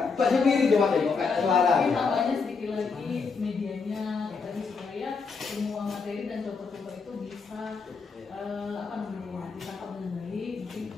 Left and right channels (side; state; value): right; quieter; 4.9 dB